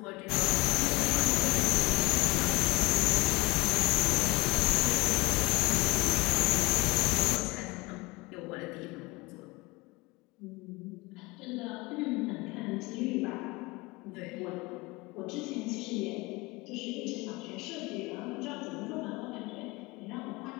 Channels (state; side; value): quieter; right; 22.5 dB